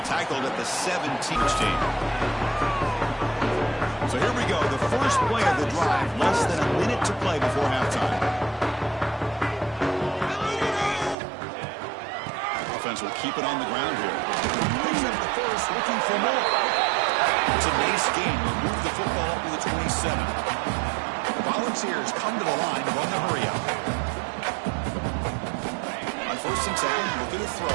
tackled at the 17th team. So here we go, the first play of the drive, less than a minute to play before halftime. Offense will keep it on the ground here. Picks up the first, looking for more. It's a nice game. We'll move the football to the 27. The Volunteers come to the line to run the hurry up. On 1st and 10, looking to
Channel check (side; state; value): left; drops out; at 11.2 s